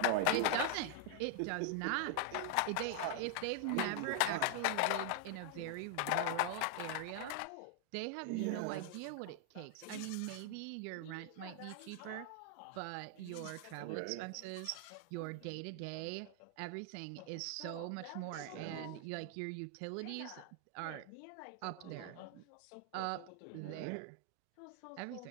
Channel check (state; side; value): different; both; correlation 0.00